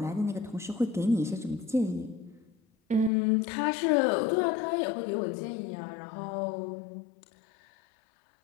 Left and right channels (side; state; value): right; drops out; at 3.1 s